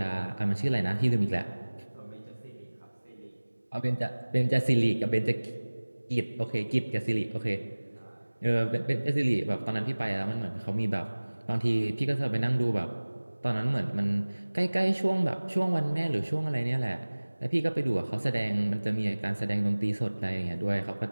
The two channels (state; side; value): inverted; both; correlation -1.00